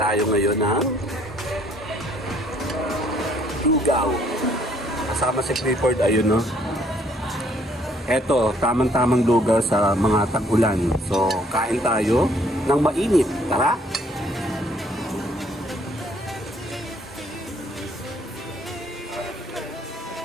ngayon ng lugaw. Kasama si Clifford, ayun, no? Eto, tamang-tamang lugaw sa mga tag-ulan. So, kain tayo ng mainit. Tara!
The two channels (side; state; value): both; normal; correlation 0.63